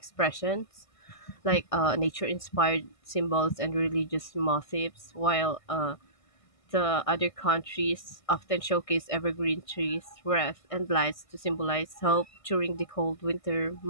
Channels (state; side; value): late; right; 1.6 ms